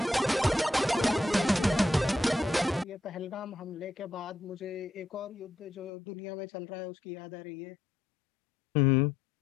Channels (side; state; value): right; drops out; at 5.9 s